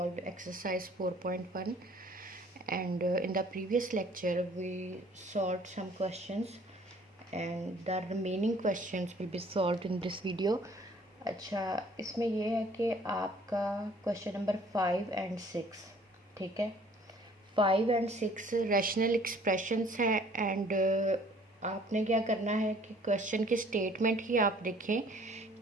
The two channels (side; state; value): both; normal; correlation 0.56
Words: exercise 4.1, and in the previous lecture we solved some questions and the remaining questions will be solved in this video. अच्छा, इसमें ये है कि आपका क्वेश्चन नंबर 5 एंड 6, ठीक है। 5 एंड 6 रैशनल एक्सप्रेशंस हैं एंड आपने क्या करना है कि क्वेश्चन की स्टेटमेंट ही आप देखें